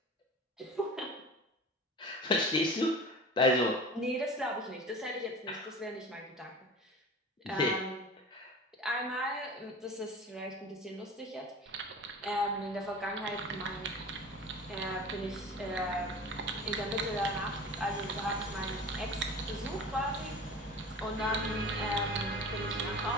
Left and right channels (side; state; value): both; normal; correlation 0.36